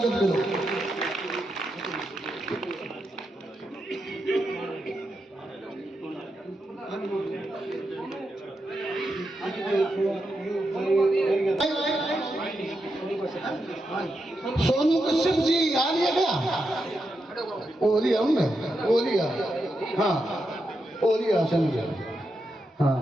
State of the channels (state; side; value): normal; both; correlation 0.86